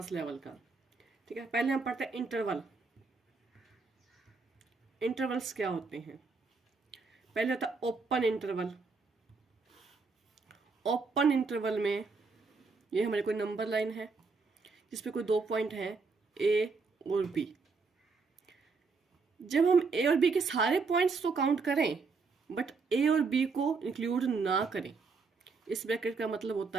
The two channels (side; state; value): left; quieter; 4.4 dB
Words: लेवल का। ठीक है, पहले हम पढ़ते हैं इंटरवल। इंटरवल्स क्या होते हैं? पहले होता है ओपन इंटरवल। ओपन इंटरवल में ये हमारे कोई नंबर लाइन है जिसपे कोई 2 पॉइंट हैं, ए और बी। जब हम ए और बी के सारे पॉइंट्स तो काउंट करें बट ए और बी को इंक्लूड ना करें, इस ब्रैकेट का मतलब